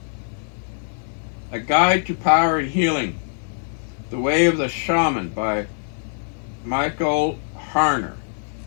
A Guide to Power and Healing, The Way of the Shaman by Michael Harner.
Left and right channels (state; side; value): silent; right; 58 dB below the other